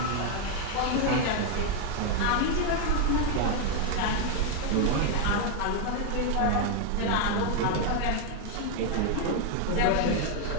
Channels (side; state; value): both; different; correlation 0.01